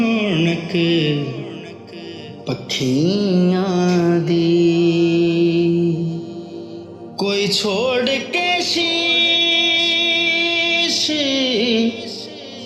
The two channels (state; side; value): identical; both; correlation 1.00